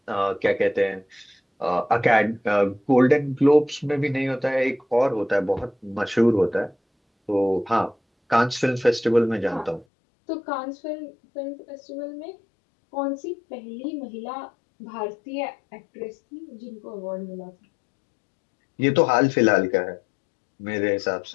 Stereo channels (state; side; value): drops out; right; at 9.9 s